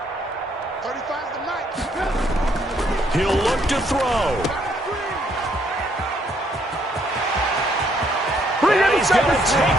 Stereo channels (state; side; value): normal; both; correlation 0.69